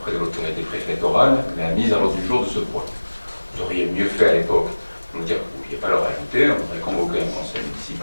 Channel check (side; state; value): both; inverted; correlation -1.00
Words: de l'autorité préfectorale la mise à l'ordre du jour de ce point. Vous auriez mieux fait à l'époque de nous dire que vous ne pouviez pas le rajouter, on aurait convoqué un conseil